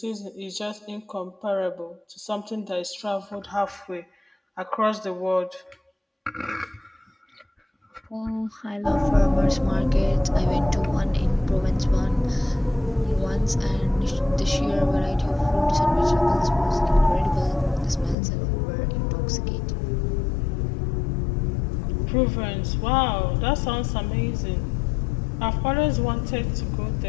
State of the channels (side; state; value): right; drops out; at 18.2 s